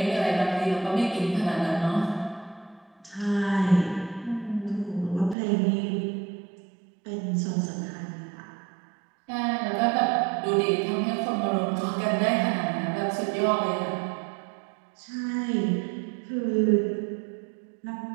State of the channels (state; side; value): drops out; left; at 5.4 s